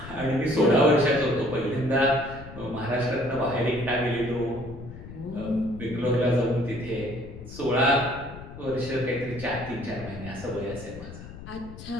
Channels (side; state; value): left; noise; rumble, 13 dB below the sound